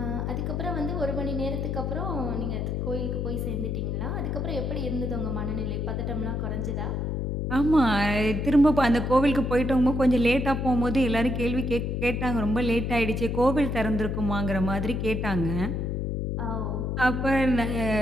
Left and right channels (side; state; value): left; noise; hum, 1 dB below the sound